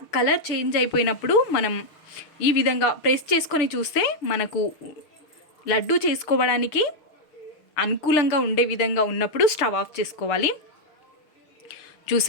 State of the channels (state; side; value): late; right; 6.6 ms